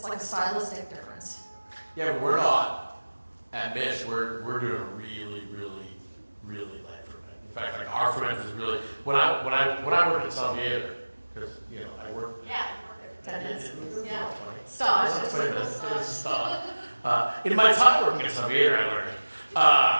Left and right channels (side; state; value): both; inverted; correlation -1.00